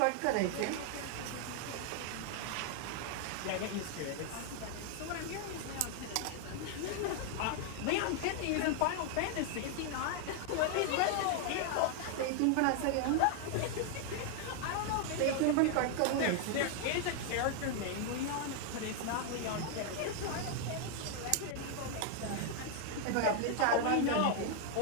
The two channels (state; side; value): different; both; correlation 0.00